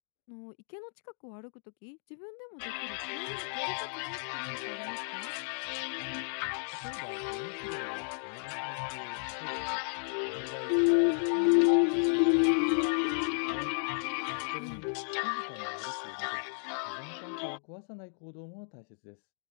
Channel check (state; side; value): silent; right; digital silence